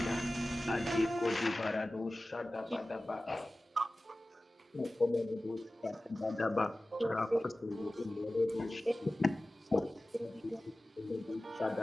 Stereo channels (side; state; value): both; normal; correlation 0.97